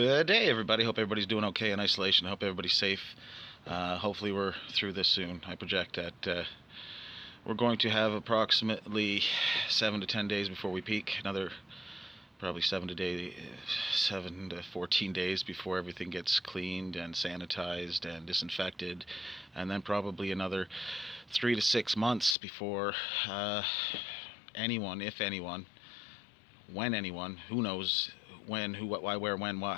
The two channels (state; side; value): drops out; right; at 22.4 s